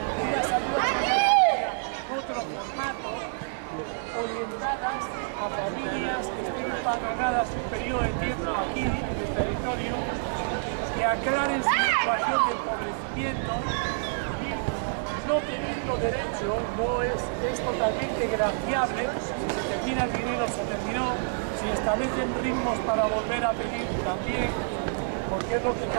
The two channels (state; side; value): silent; left; digital silence